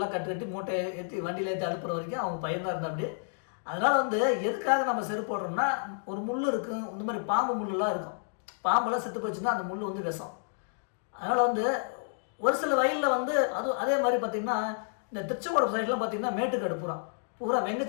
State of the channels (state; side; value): silent; right; digital silence